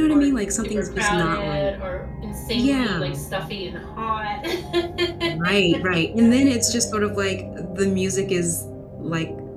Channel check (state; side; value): identical; both; correlation 1.00